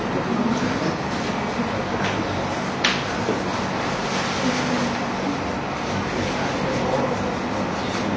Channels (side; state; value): both; identical; correlation 1.00